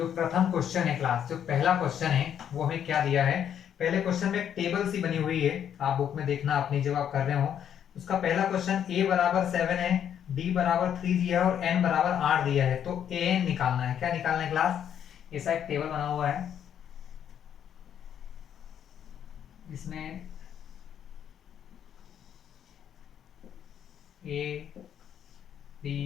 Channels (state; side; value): quieter; right; 9.2 dB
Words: प्रथम क्वेश्चन है क्लास, जो पहला क्वेश्चन है वो हमें क्या दिया है? पहले क्वेश्चन में एक टेबल सी बनी हुई है, आप बुक में देखना अपनी जब आप कर रहे हो। उसका पहला क्वेश्चन a बराबर 7 है, d बराबर 3 दिया है और n बराबर 8 दिया है। तो an निकालना है। क्या निकालना है क्लास? ऐसा एक टेबल बना हुआ है, इसमें a b